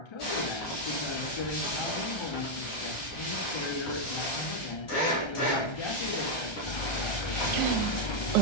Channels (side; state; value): right; late; 1.3 ms